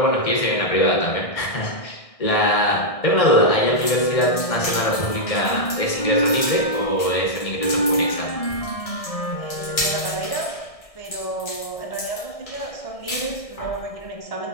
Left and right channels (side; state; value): right; late; 1.6 ms